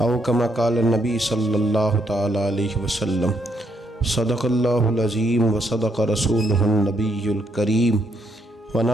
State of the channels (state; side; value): normal; both; correlation 0.74